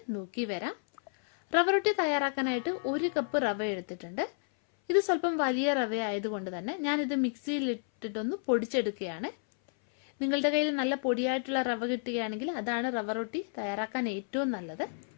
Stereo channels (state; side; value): silent; right; 57 dB below the other